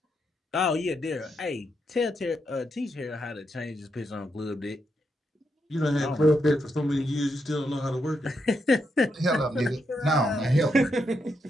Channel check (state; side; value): normal; both; correlation 0.81